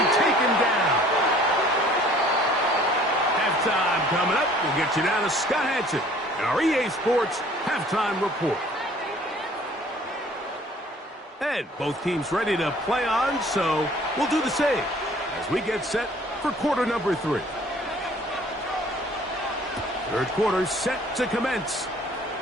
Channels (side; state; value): both; normal; correlation 0.54